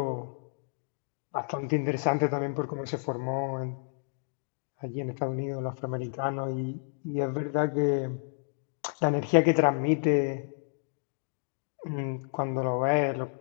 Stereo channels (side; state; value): right; silent; digital silence